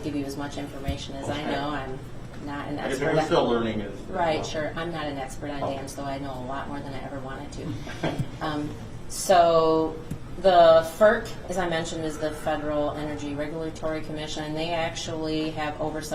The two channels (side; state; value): both; identical; correlation 1.00